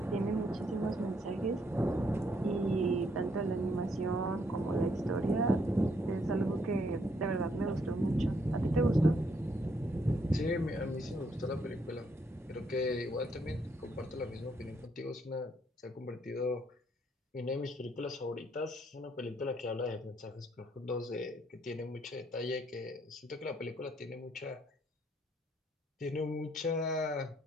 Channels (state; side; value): normal; both; correlation 0.72